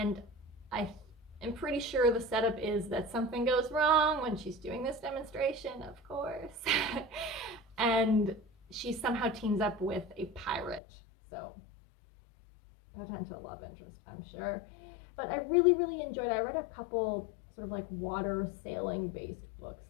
I am pretty sure the setup is that something goes wrong when she's doing this demonstration, of course. And she somehow teams up with a pirate. So potential love interest, I'm sure. But I really, really enjoyed it. I read a couple sort of like water sailing based books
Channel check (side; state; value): right; drops out; at 10.8 s